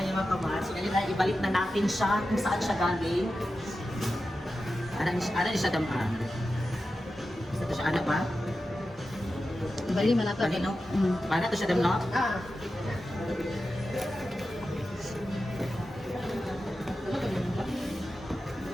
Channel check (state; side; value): normal; both; correlation 0.92